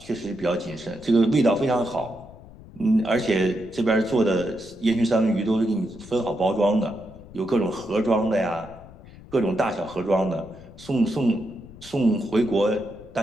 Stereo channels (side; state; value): left; noise; rumble, 19 dB below the sound